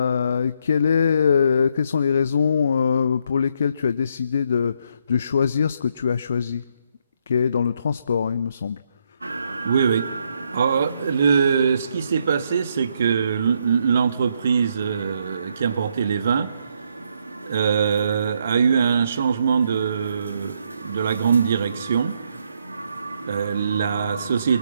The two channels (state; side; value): inverted; both; correlation -0.74